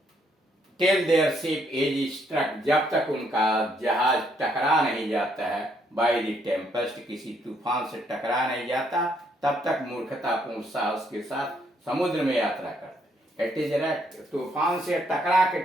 Till their ship is struck, जब तक उनका जहाज टकरा नहीं जाता है बाय द टेम्पेस्ट, किसी तूफान से टकरा नहीं जाता, तब तक मूर्खतापूर्ण साहस के साथ समुद्र में यात्रा करते। इट इज राइट, तूफान से टकरा के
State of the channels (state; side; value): normal; both; correlation 0.71